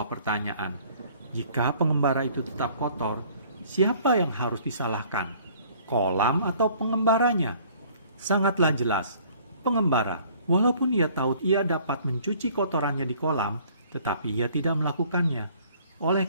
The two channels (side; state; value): both; inverted; correlation -0.56